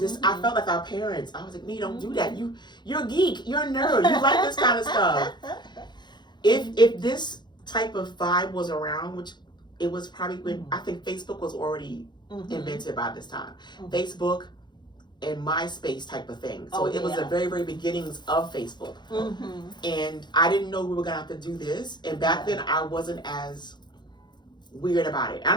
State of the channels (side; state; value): right; late; 0.21 ms